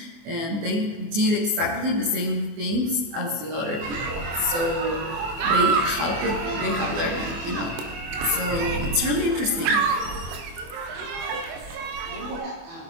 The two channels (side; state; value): left; late; 24 ms